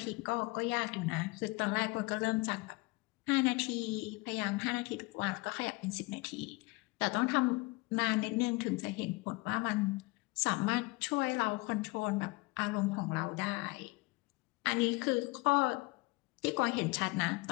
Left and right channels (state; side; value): quieter; right; 24.6 dB